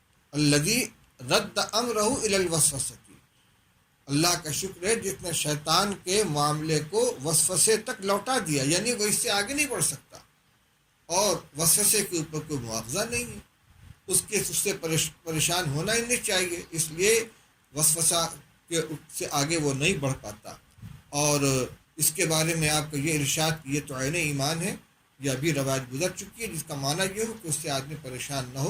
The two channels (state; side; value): identical; both; correlation 1.00